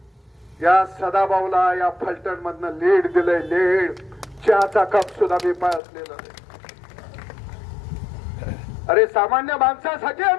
या सदाभाऊला या फलटण मधनं लीड दिलंय. लीड चहाचा कप सुद्धा मी पाळलेला नाही. अरे सामान्य माणसासाठी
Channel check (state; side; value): drops out; right; at 5.8 s